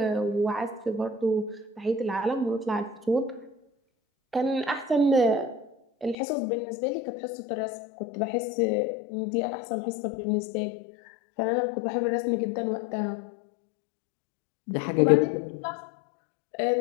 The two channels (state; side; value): drops out; right; at 6.2 s